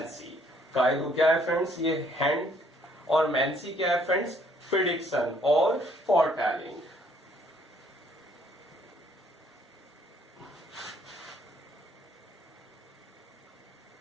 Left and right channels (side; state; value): both; normal; correlation 0.64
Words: कायरो क्या है फ्रेंड्स, ये हैंड, और मैंसी क्या है फ्रेंड्स, प्रिडिक्शन और फोरटेलिंग।